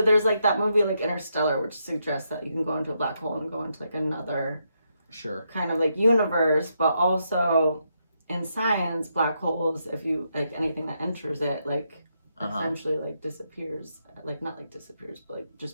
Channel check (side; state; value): both; inverted; correlation -0.80